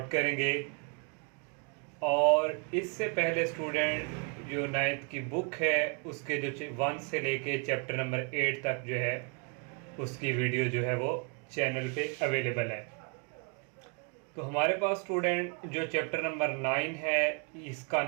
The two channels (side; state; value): left; quieter; 34.5 dB